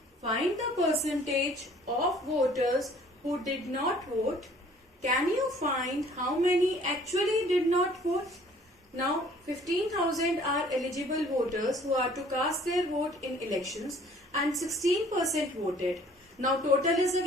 Find the percentage of voters who did not vote. Can you find how many actually did not vote? Now 15,000 are eligible voters who are to cast their vote in elections and 16% voted. Now total is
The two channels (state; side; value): normal; both; correlation 0.55